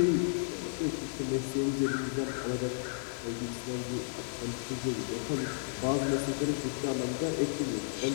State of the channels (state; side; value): silent; right; digital silence